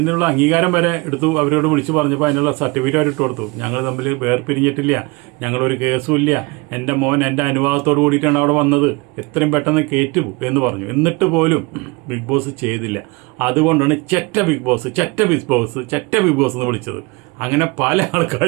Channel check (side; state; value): left; quieter; 26.1 dB